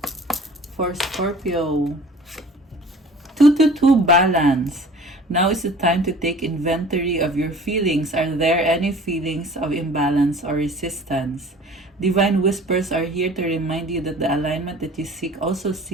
for Scorpio? 222 balance. Now is the time to take inventory of your feelings. Are there any feelings of imbalance or resistance? Divine whispers are here to remind you that the alignment that you seek also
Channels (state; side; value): normal; both; correlation 0.46